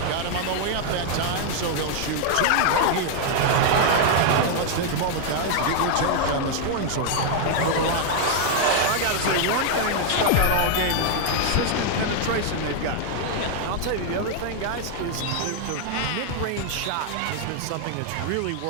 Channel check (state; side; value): different; both; correlation 0.00